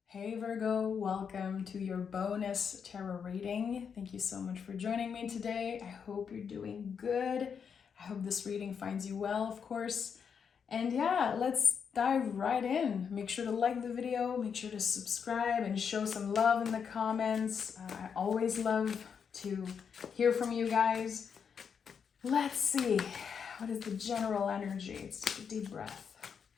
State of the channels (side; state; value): right; quieter; 6.8 dB